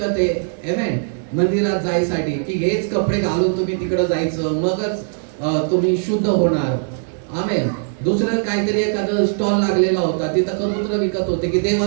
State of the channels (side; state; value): left; silent; digital silence